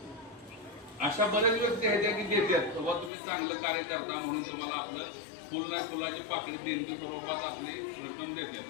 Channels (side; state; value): right; drops out; at 3.1 s